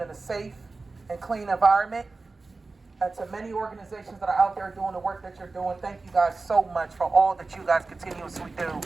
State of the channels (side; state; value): left; quieter; 3.7 dB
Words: in a safe and clean environment. And to many organizations that are out there doing the work that you're doing, thank you guys so much for all that you guys continuously do